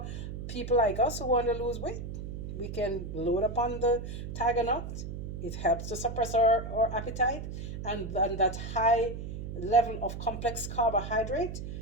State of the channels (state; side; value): noise; right; hum, 7 dB below the sound